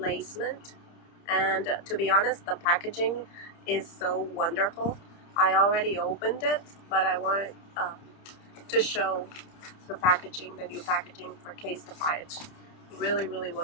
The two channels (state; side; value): late; right; 30 ms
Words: and to be honest, the packaging is so wonderful. I already opened it, but I wanted to show the new packaging for Casetify. It's really, really